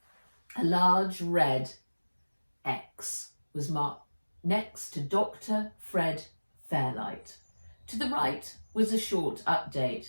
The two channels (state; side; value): inverted; both; correlation -1.00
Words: A large red X was marked next to Dr. Fred Fairlight. To the right was a short